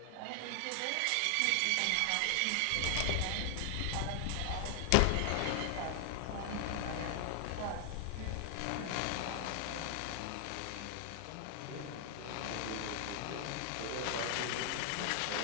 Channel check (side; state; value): both; different; correlation 0.00